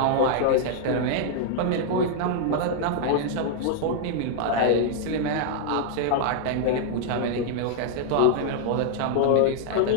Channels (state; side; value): different; both; correlation -0.01